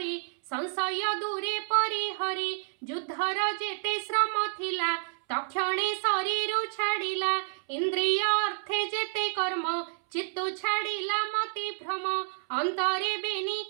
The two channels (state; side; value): silent; left; 58 dB below the other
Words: संशय दूरे परिहरी युद्धर जेते श्रम थिला तक्षणे शरीर छाड़िला इंद्रिय अर्थे जेते कर्म चित्तु छाड़िला मति भ्रम अंतरे बेनी